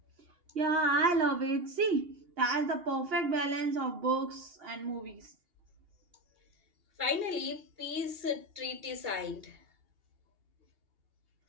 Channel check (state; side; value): late; left; 2.8 ms